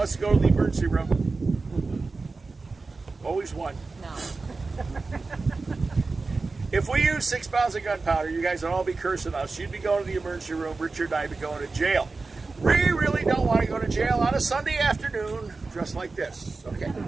to go to the emergency room? Always one. No. If we use 6 pounds of gunpowder, you guys would all be cursing us. You'd be going to the emergency room. Richard and I'd be going to jail. We really don't want to go to jail on a Sunday afternoon dressed like this. Okay.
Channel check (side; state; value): left; quieter; 3.9 dB